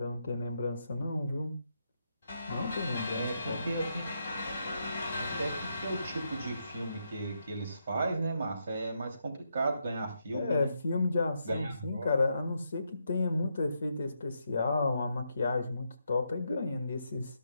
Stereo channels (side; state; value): both; inverted; correlation -0.81